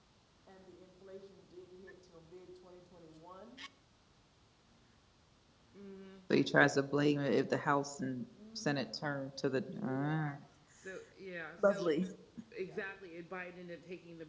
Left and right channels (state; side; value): identical; both; correlation 1.00